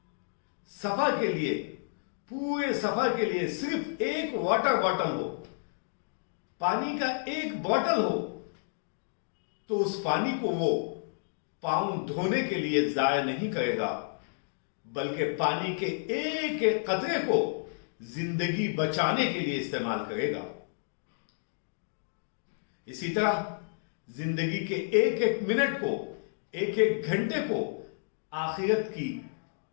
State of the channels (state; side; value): silent; right; digital silence